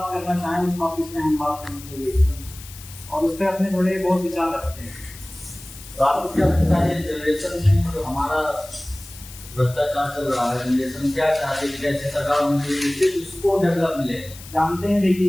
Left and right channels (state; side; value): noise; left; hiss, 17 dB below the sound